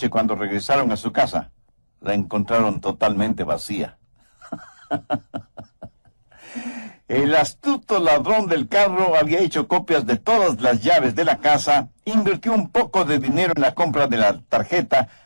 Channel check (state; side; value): inverted; both; correlation -1.00